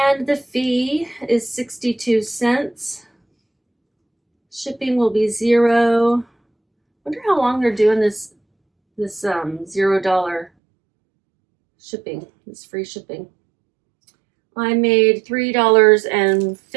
the fee is 62 cents. Shipping will be $0. Wonder how long they're doing this $0 shipping, this free shipping. I made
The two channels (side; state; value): left; drops out; at 10.5 s